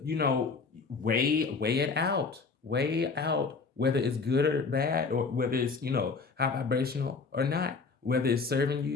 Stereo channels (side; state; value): right; quieter; 4.6 dB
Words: Weigh it out. Weigh out whether it's good or bad, or whether it's, high vibrational or not, whether it's serving